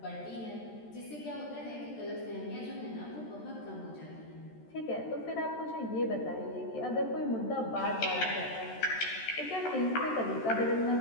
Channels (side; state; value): right; late; 13 ms